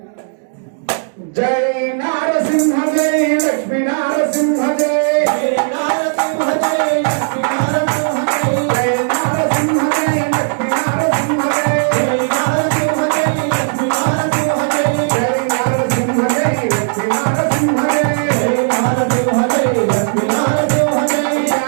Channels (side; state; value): left; silent; digital silence